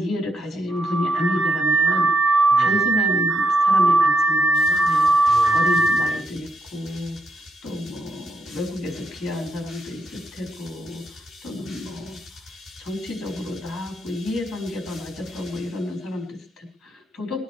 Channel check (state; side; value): normal; both; correlation 0.79